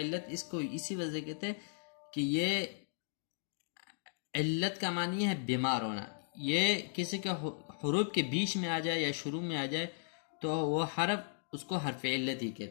اس کو اسی وجہ کہتے ہیں کہ یہ علت کا معنی ہے بیمار ہونا، یہ کسی کے حروف کے بیچ میں آ جائے یا شروع میں آ جائے تو وہ حرف اس کو حرف علت ہی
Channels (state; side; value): silent; right; digital silence